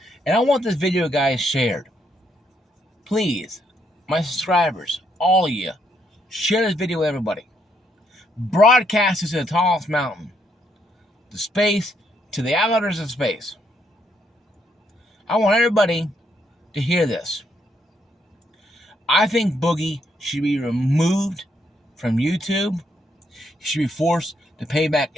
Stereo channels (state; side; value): normal; both; correlation 0.74